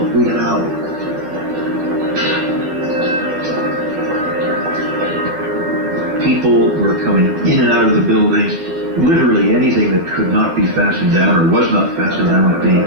we got out. People were coming in and out of the building. Literally anything that could not be fastened down or was not fastened down was being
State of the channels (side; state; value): left; late; 12 ms